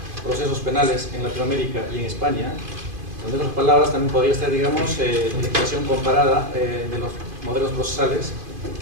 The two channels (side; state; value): left; late; 2.5 ms